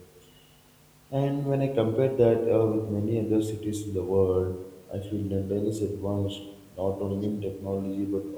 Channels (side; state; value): both; identical; correlation 1.00